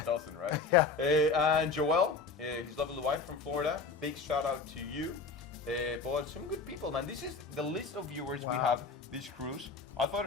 doesn't, right? Yeah. And Joel, his lovely wife from Florida. Big shout out to you. But some good people, man. This is the list of viewers we have this cruise. I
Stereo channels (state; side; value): quieter; right; 4.4 dB